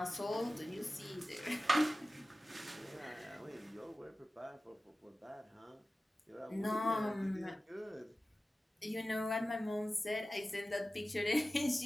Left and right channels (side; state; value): both; normal; correlation 0.95